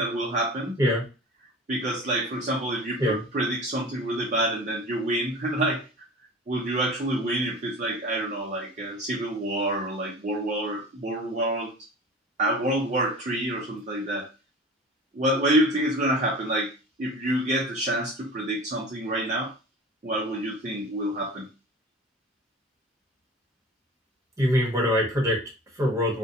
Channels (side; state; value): both; normal; correlation 0.38